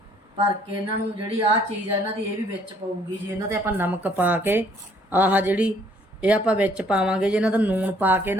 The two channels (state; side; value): normal; both; correlation 0.63